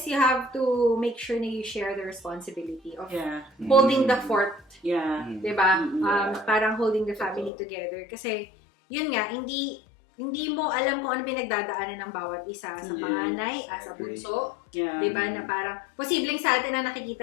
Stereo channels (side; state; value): right; drops out; at 7.5 s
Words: you have to make sure na you share the responsibility of Yeah. holding the fort. Yeah. Diba? Yeah. Parang holding the family together. Kasi, yun nga, hindi mo alam kung ano pinagdadaanan ng bawat isa sa panganay, as a bunso. Yeah. Diba? Na parang, posibleng sa atin na